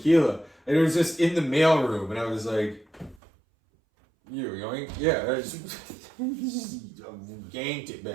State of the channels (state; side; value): drops out; left; at 3.2 s